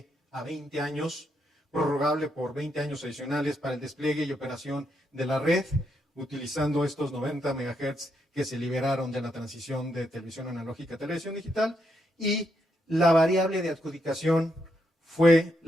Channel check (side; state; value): both; normal; correlation 0.79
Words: a 20 años, prorrogable por 20 años adicionales para el despliegue y operación de la red, utilizando estos 90 MHz que se liberaron de la transición de televisión analógica a televisión digital, y la variable de adjudicación fue